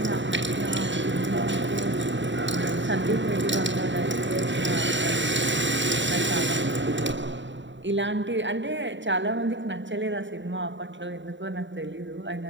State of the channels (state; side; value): late; left; 0.54 ms